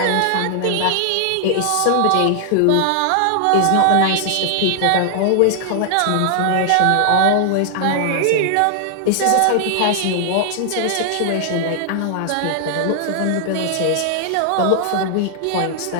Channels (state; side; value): different; both; correlation 0.00